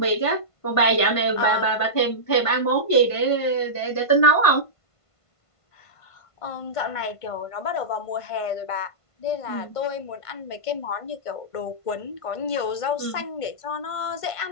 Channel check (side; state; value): right; late; 1.5 ms